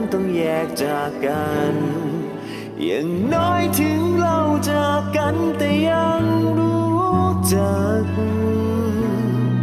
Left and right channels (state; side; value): identical; both; correlation 1.00